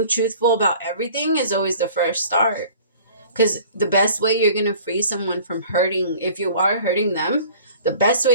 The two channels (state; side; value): inverted; both; correlation -0.48